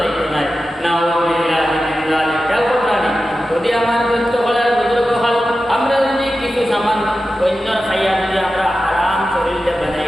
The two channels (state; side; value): normal; both; correlation 0.93